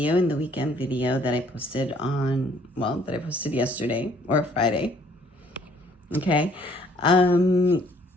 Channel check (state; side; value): normal; both; correlation 0.62